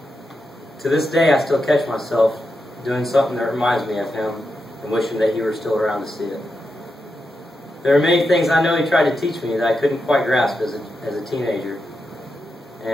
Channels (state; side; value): normal; both; correlation 0.87